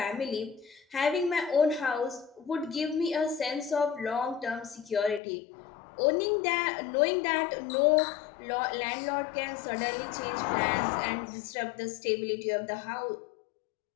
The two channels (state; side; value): drops out; right; at 5.2 s